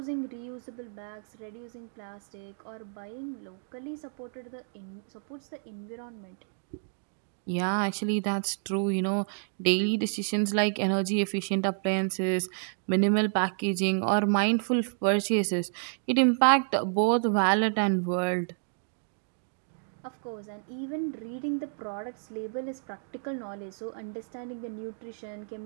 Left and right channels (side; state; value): left; silent; digital silence